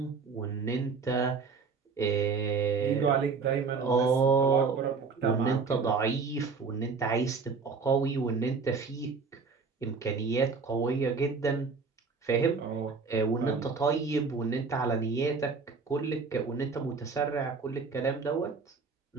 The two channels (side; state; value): left; quieter; 5.0 dB